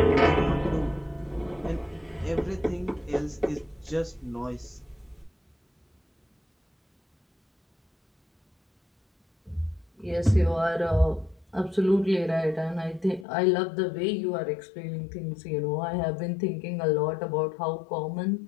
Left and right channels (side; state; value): right; drops out; at 13.2 s